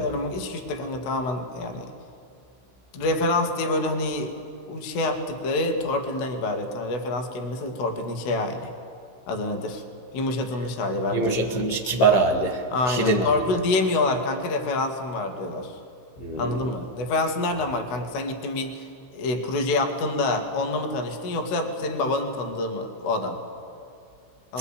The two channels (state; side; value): late; right; 16 ms